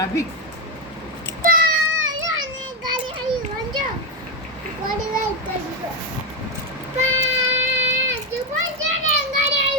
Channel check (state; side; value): normal; both; correlation 0.07